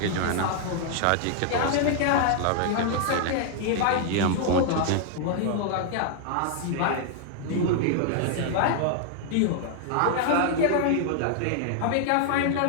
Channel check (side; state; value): both; different; correlation 0.00